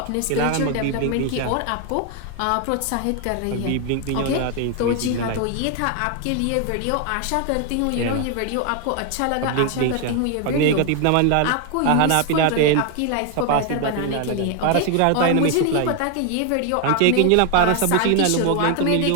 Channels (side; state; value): both; different; correlation 0.00